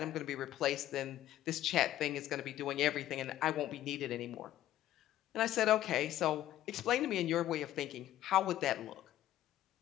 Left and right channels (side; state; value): right; quieter; 13.3 dB